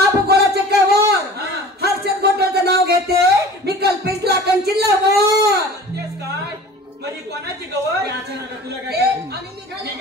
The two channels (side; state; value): both; normal; correlation 0.42